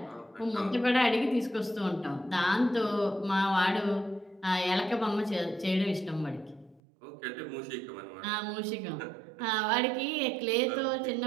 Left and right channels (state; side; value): drops out; left; at 6.8 s